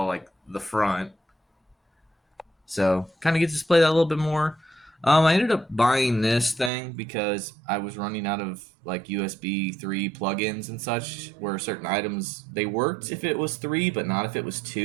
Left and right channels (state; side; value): drops out; left; at 6.7 s